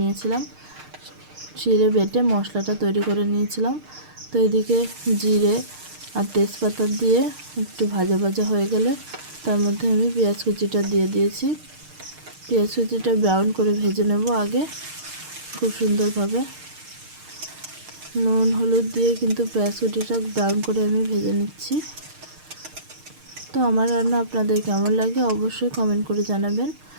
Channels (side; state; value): left; late; 6.5 ms